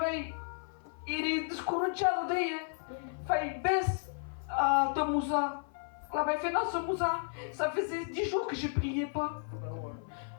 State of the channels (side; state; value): right; silent; 55 dB below the other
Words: est descorrechado d'ailleurs. Il baisse de Moussa. Là, il fait dans ce Moussa. Ça faisait 10 jours que je ne priais pas.